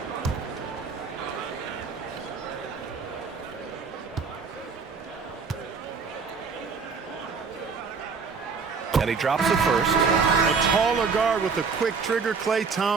And he drops it first. A taller guard with a quick trigger, Klay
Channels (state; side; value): quieter; left; 5.3 dB